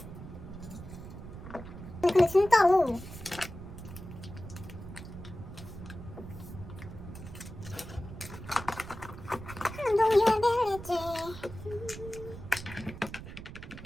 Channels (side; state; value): right; noise; rumble, 12 dB below the sound